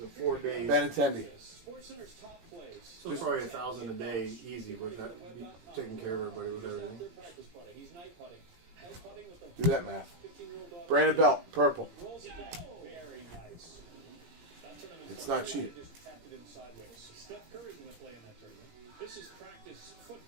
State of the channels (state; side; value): late; left; 17 ms